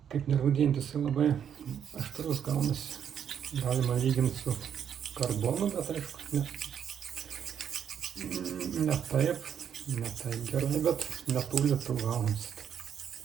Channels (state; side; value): quieter; left; 8.5 dB